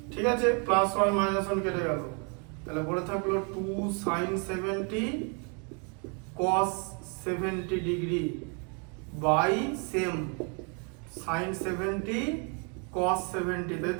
ঠিক আছে, প্লাস 1 মাইনাস 1 কেটে গেল, তাহলে পড়ে থাকলো 2 sin 70 cos 70 degree by same sin 70 cos 70, তাই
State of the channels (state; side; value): quieter; left; 36.5 dB